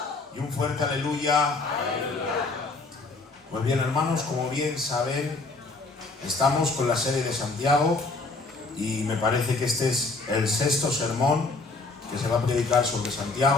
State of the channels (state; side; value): quieter; right; 3.6 dB